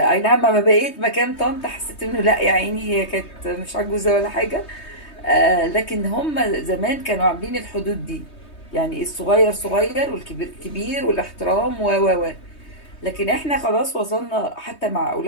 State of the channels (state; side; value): late; right; 3.2 ms